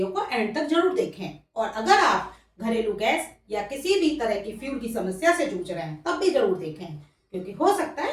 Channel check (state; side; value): identical; both; correlation 1.00